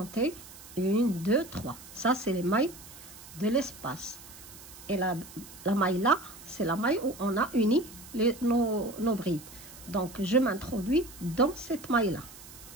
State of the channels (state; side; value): noise; right; hiss, 17 dB below the sound